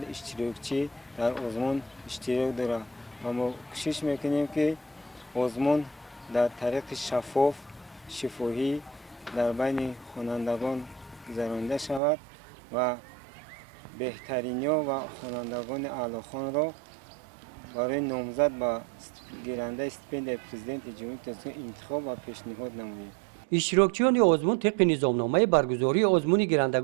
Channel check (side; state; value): left; drops out; at 12.0 s